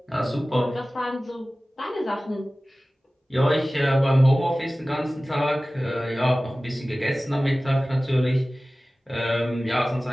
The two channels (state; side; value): normal; both; correlation 0.97